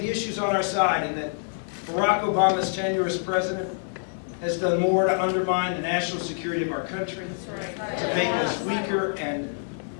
the issues on our side, and that Barack Obama's tenure as president has done more to undermine the national security of our country, to make us weaker and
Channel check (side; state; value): right; silent; digital silence